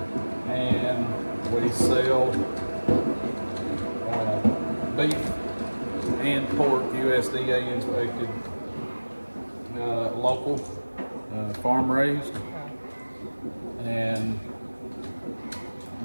and we sell beef and pork USDA inspected, local, farm raised, and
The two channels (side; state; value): both; inverted; correlation -1.00